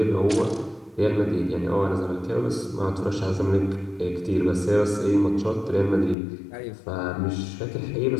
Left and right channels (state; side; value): drops out; right; at 6.2 s